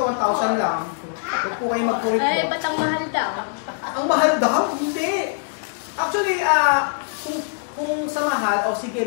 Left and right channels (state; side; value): silent; right; digital silence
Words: 1,000 lang. Huwag po kayo mag-correct mo. ba't ang mahal daw? Ang mahal daw? Hindi. Actually, kung sa mahal, sige,